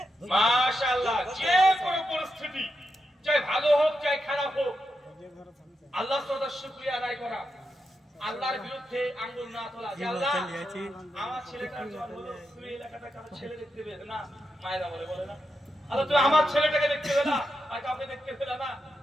মাশাআল্লাহ, যে কোনো পরিস্থিতি, চাই ভালো হোক চাই খারাপ হোক, আল্লাহ তাআলার শুকরিয়া আদায় করা, আল্লাহর বিরুদ্ধে আঙ্গুল না তোলা। যে আল্লাহ, আমার ছেলেটার জন্ম হলো, তুমি এলাকাটা কারো ছেলে দেখতে পেলে না, মায়েরা বলে না, আল্লাহ তুমি আমার ছেলেটাকে দেখতে পেলে না, আর কাউকে দেখতে পেলে না,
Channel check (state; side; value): normal; both; correlation 0.86